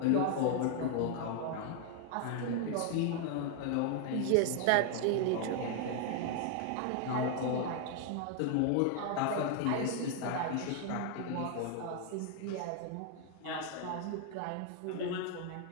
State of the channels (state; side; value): different; both; correlation 0.00